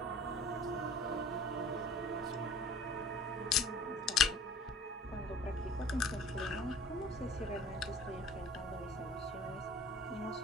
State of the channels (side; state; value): both; normal; correlation 0.48